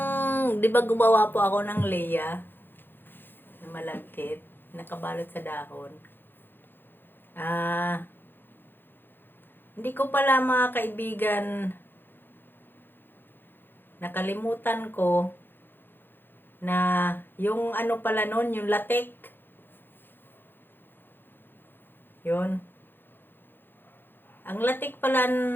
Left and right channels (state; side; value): late; right; 0.098 ms